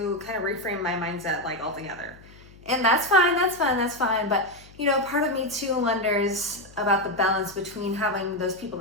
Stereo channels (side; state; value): left; noise; hum, 23 dB below the sound